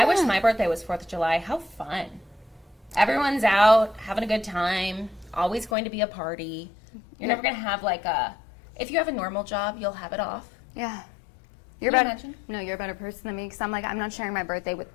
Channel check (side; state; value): right; drops out; at 5.8 s